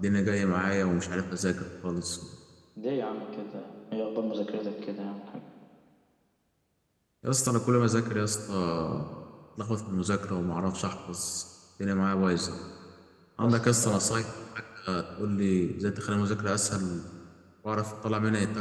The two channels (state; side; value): identical; both; correlation 1.00